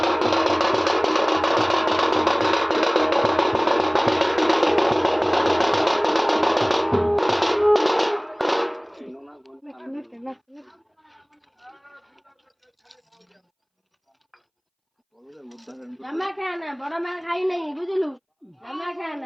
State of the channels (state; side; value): identical; both; correlation 1.00